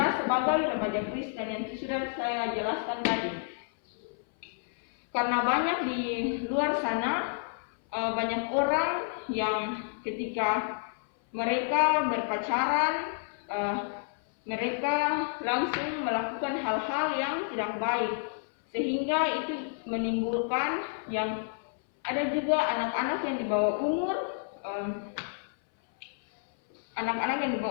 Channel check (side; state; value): right; silent; 58 dB below the other